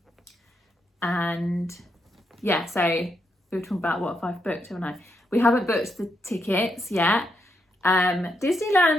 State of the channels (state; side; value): normal; both; correlation 0.80